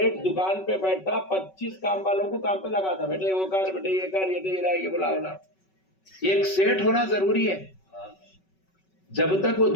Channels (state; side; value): late; right; 5.3 ms